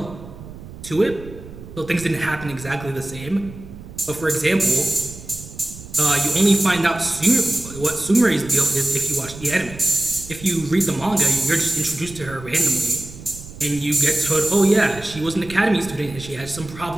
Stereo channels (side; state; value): right; noise; rumble, 15 dB below the sound